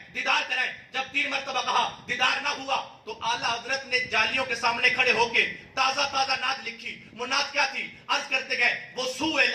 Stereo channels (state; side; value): identical; both; correlation 1.00